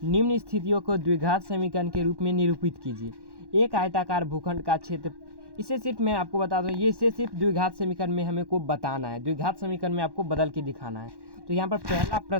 निम्न स्थितियों को द्विघात समीकरण के रूप में निरूपित कीजिए। एक आयताकार भूखंड का क्षेत्र, इसे सिर्फ मैं आपको बता दूँ, ये इसे सिर्फ द्विघात समीकरण में हमें को बताना है, द्विघात समीकरण में आपको बदल के दिखाना है। तो यहाँ पर पहला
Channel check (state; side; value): late; left; 1.1 ms